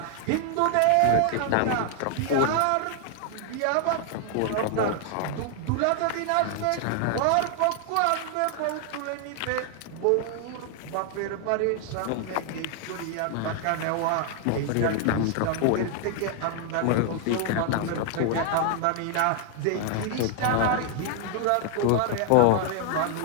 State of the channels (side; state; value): both; different; correlation 0.00